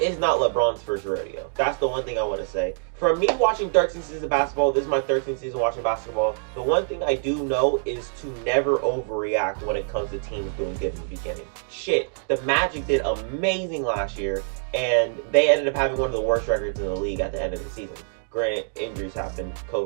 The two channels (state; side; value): silent; left; 62 dB below the other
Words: not LeBron's first rodeo. That's the one thing I want to say. For me watching 13 seasons of basketball, this is my 13th season watching basketball, the one thing I do know is to never overreact when it comes to teams doing good in the beginning. Shit, the Magic did amazing last year, and they ended up having one of the worst records in the league at the end of the season. Granted, injuries happened,